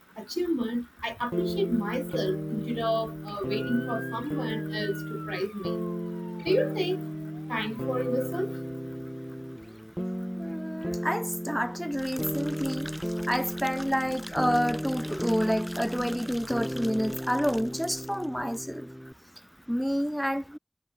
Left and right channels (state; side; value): identical; both; correlation 1.00